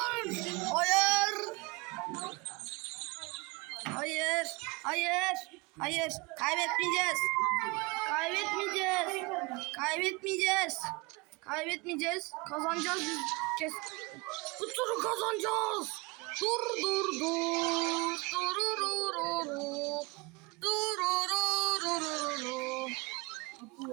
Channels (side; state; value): left; quieter; 26.5 dB